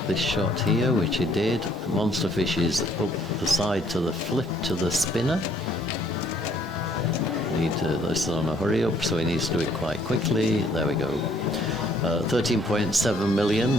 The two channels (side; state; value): both; normal; correlation 0.64